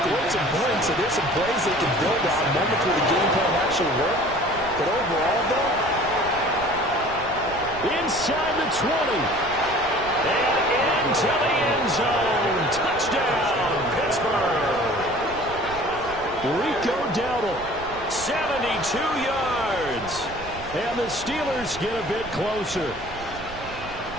some points, so there's some plays they can build on, moments where the game plan actually worked. But overall, though, inside the 20. And into the end zone. Touchdown, Pittsburgh. Rico Dowdle. 72 yards. And the Steelers get a bit closer.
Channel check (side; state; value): right; noise; rumble, 16 dB below the sound